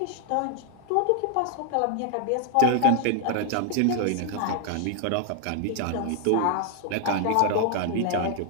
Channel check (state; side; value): different; both; correlation 0.00